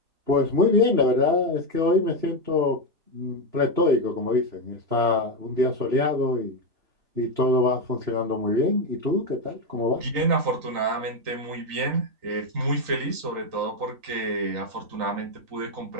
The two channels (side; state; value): left; late; 3.9 ms